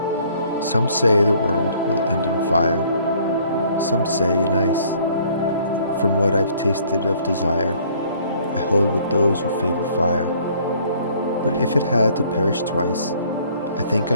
Some say the world will end in fire. Some say in ice. From what I've tasted of desire, I hold with those who favor fire. But if it had to perish twice, I think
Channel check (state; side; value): inverted; both; correlation -0.59